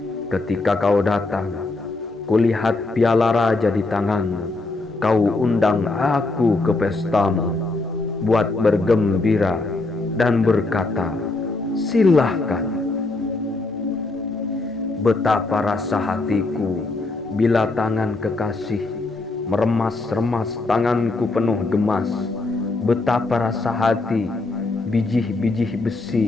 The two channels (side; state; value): right; quieter; 3.2 dB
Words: Ketika kau datang, kulihat piala raja di tanganmu. Kau undang aku ke pestamu, buat bergembira dan berkata, "Silahkan." Betapa rasa hatiku bila tangan kekasih meremas-remas tanganku penuh gemas. Betapa rasa hati bijih-bijih